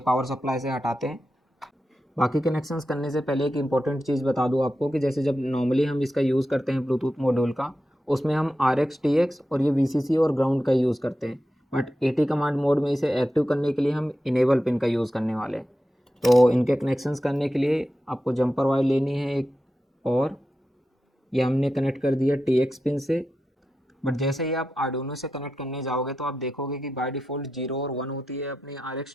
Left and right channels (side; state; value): both; normal; correlation 0.90